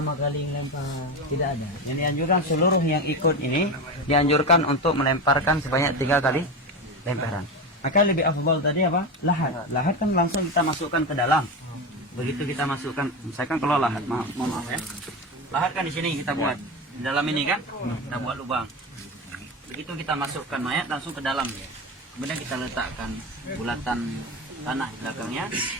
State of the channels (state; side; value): normal; both; correlation 0.20